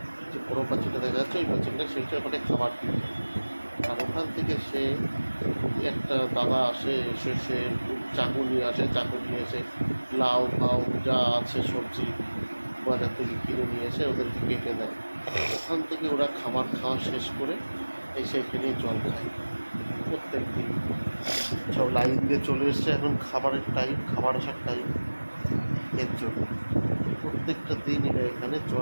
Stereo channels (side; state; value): both; inverted; correlation -1.00